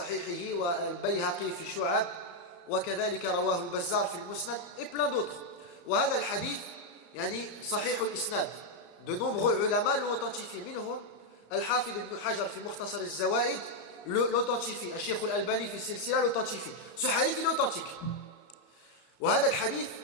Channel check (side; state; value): right; late; 34 ms